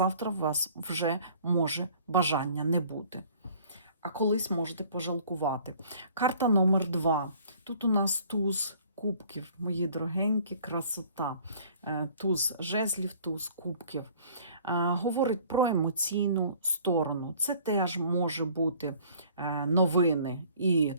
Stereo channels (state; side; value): inverted; both; correlation -0.53